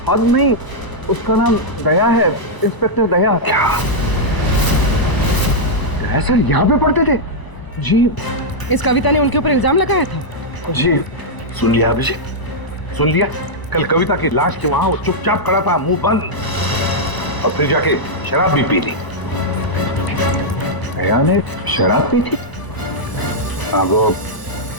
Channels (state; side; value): late; right; 1.0 ms